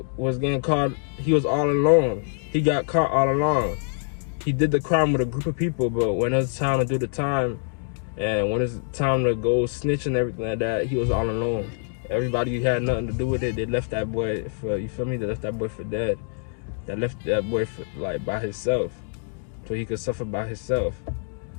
was getting caught, he was all alone. He got caught all alone. He did the crime with a group of people, but when it was time to do the time, And when it's time to go snitch and everything like that, he was all alone. Everybody who had nothing to do with it, they left that boy for, you feel me? They left that boy for dead. They left that boy for, like, by himself, so he could suffer by himself.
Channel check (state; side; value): silent; right; 62 dB below the other